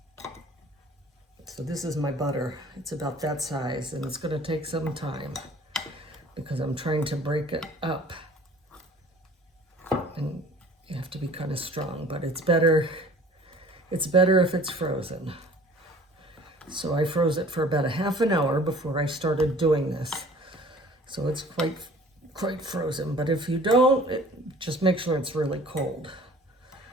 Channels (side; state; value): both; normal; correlation 0.49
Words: So this is my butter. It's about that size, and it's going to take some time because I'm trying to break it up. And you have to be kind of strong, but it's better if it's frozen. So I froze it for about a half an hour before I started doing this. So it's quite frozen, but if you don't, just make sure it's really cold